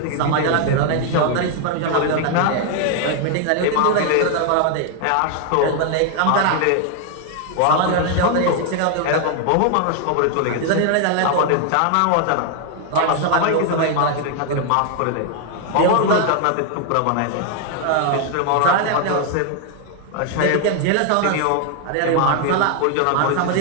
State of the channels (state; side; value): different; both; correlation 0.00